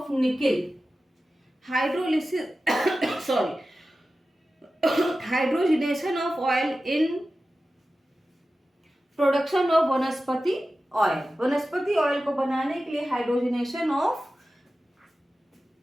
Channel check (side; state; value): both; normal; correlation 0.94